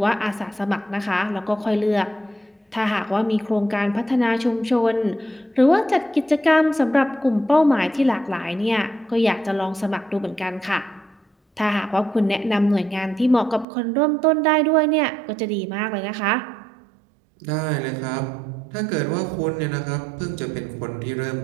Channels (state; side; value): drops out; left; at 13.7 s